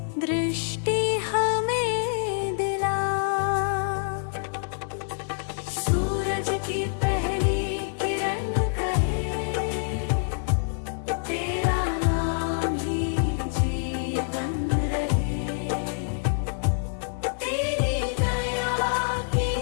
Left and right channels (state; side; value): silent; right; digital silence